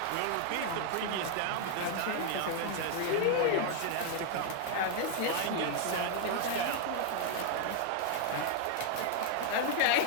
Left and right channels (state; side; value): different; both; correlation 0.00